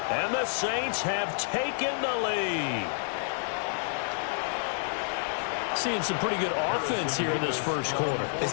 And the Saints have taken the lead. Seeing some pretty good offense here in this first quarter.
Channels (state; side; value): silent; right; digital silence